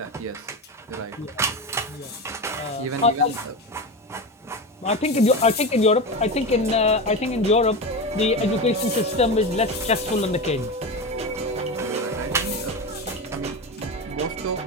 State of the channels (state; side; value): normal; both; correlation 0.22